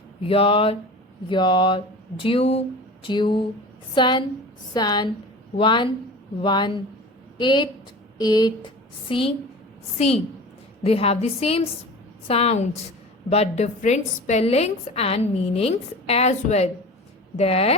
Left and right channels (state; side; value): normal; both; correlation 0.36